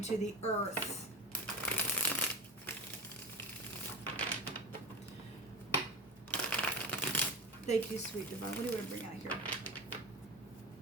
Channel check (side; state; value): both; normal; correlation 0.25